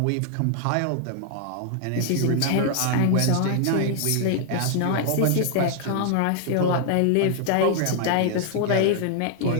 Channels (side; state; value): both; different; correlation 0.00